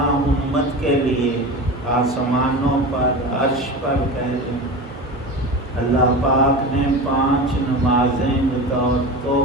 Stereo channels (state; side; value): normal; both; correlation 0.29